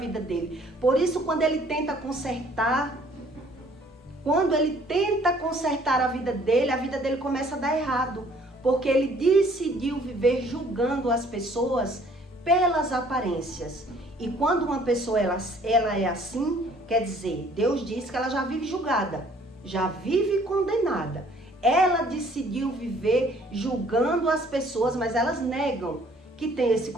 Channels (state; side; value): normal; both; correlation 0.58